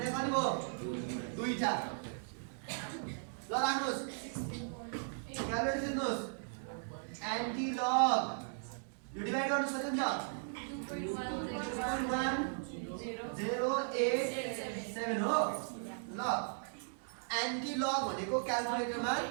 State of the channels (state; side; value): silent; left; digital silence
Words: कति भयो दुईटा ल राख्नुस् क्याल्कुलेटर सिक्नुस् एन्टी लग यो डिभाइड गर्न सकिन्छ 2.1087 हो ल एन्टी लग भनेको क्याल्कुलेटरमा